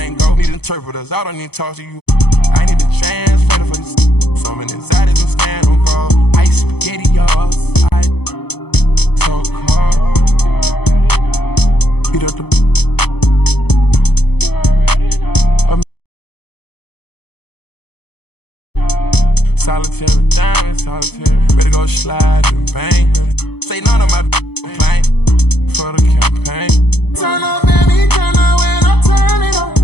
go. Need interpreters, I don't need to talk to you. I need to translate for this. So many anxieties and stand on guard. Ice spaghetti, y'all. So cold. Beat up the. Solitary diamond, solitary. Ready to go slide and bang. Say none of my complaint for the campaign. Turn up, baby, turn up when I turn it on.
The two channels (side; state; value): right; late; 0.98 ms